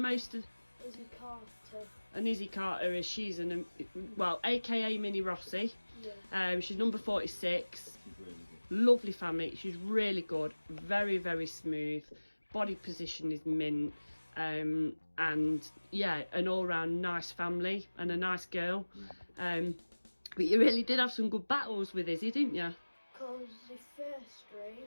of? Izzy Carter. And Izzy Carter is aka Mini Rossi. Yeah. She's number 46. She's really good. Lovely family. She's really good. Very, very smooth. Body position is mint. And yeah, an all-round nice family and a nice girl. But you really did have some good battles with Izzy, didn't you? Because the first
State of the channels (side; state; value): both; inverted; correlation -1.00